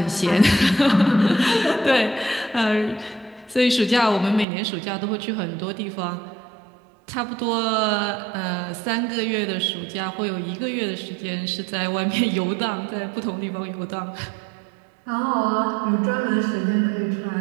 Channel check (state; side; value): drops out; left; at 4.5 s